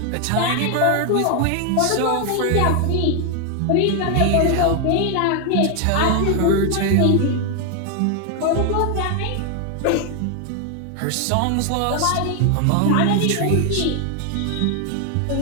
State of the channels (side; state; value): both; different; correlation 0.00